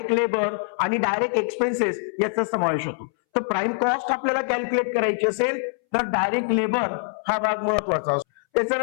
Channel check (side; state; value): right; silent; 63 dB below the other